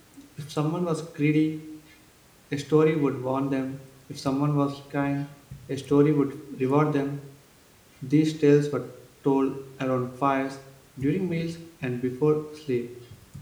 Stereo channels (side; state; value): both; identical; correlation 1.00